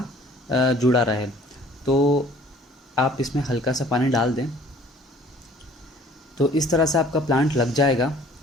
जुड़ा रहे। तो आप इसमें हल्का सा पानी डाल दें। तो इस तरह से आपका प्लांट लग जाएगा।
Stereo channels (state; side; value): normal; both; correlation 0.53